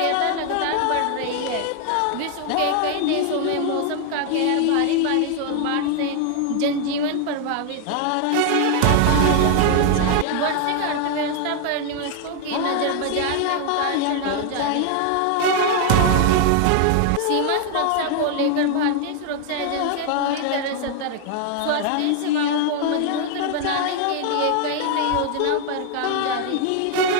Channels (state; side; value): different; both; correlation 0.00